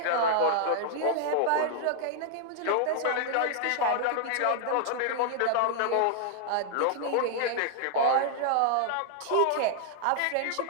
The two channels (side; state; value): both; different; correlation -0.01